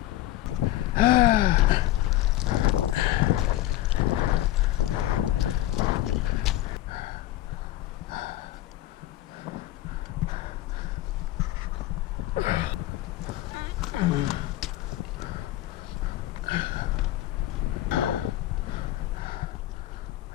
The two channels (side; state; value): right; quieter; 14.9 dB